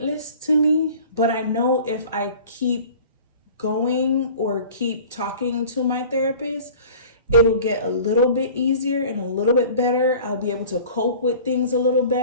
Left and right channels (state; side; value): inverted; both; correlation -0.44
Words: to me, but I know if I keep going or keep talking to my therapist, it'll get a little bit easier and a little bit better. I'll be able to cope with things a little